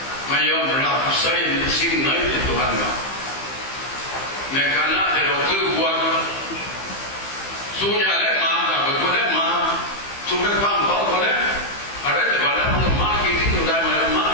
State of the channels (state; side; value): late; right; 15 ms